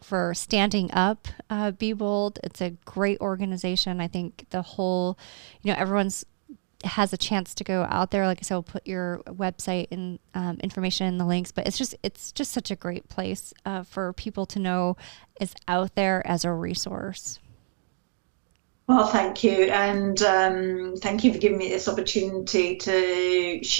standing up, Be Bold. It's a great organization. I think the whole, everyone's has a chance to go out there. Like I said, we'll put your website and information in the links, but it's just such a great place for people to know is out there as a resource. Well, thank you. And thank you for giving me this opportunity to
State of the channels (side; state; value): left; silent; digital silence